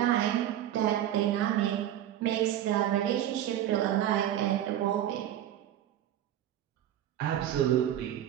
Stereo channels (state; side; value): quieter; left; 11.7 dB